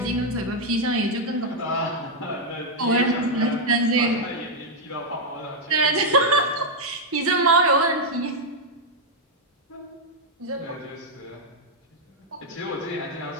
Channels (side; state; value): both; normal; correlation -0.02